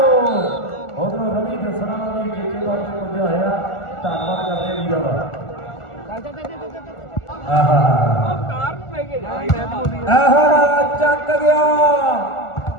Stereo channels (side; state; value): right; late; 1.4 ms